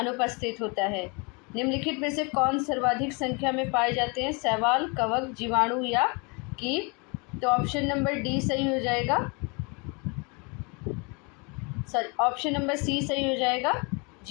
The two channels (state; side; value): quieter; right; 31.2 dB